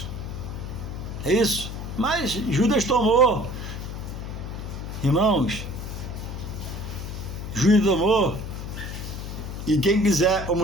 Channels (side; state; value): left; noise; hum, 7 dB below the sound